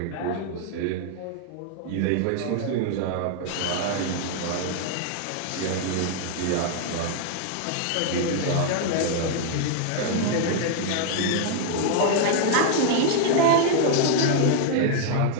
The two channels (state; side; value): different; both; correlation -0.01